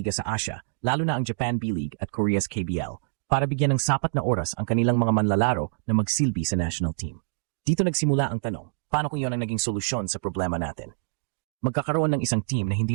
sa Asia, lalo na ang Japan B-League at Korea's KBL, para bigyan ng sapat na oras ang kanilang mga manlalaro na magsilbi sa national team. Dito nagsimula ang tanong, paano kung yun ang naging solusyon sa problema natin? Magkakaroon ng isang team na hindi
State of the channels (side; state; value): left; silent; digital silence